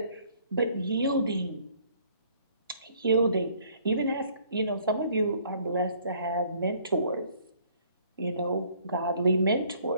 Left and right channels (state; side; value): inverted; both; correlation -0.60